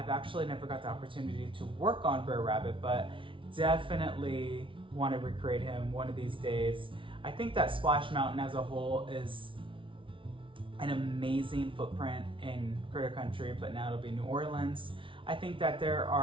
actually never got the opportunity to work on Briar Rabbit, but definitely want to recreate him one of these days. I think that Splash Mountain as a whole is an amazing footprint in Critter Country, but now it'll be New Orleans. I think that there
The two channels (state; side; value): late; left; 0.25 ms